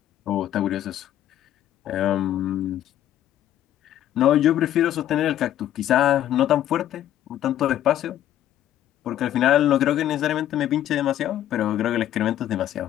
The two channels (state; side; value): quieter; right; 11.9 dB